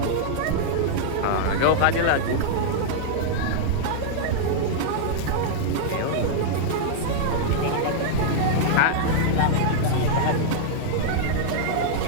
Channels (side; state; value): both; different; correlation -0.01